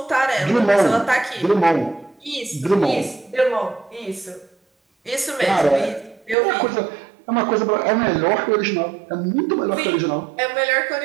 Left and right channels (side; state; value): left; drops out; at 6.4 s